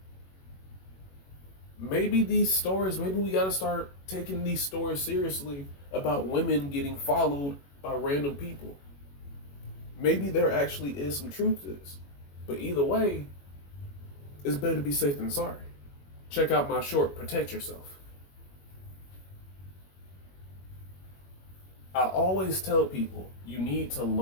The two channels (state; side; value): late; right; 21 ms